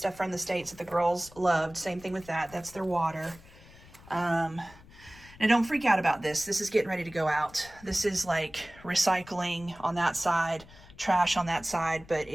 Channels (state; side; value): noise; left; rumble, 22 dB below the sound